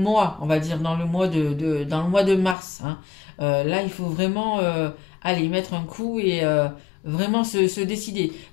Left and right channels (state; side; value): drops out; right; at 2.6 s